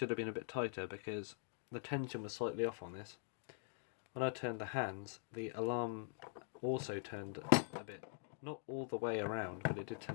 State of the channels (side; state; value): right; silent; digital silence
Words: have been a bit tighter because the tension was slightly off on this. When I turned the hands, the alarm also turned a bit. Not all the way around, but it did